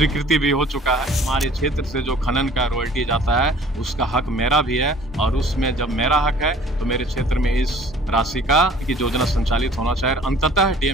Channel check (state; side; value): normal; both; correlation 0.51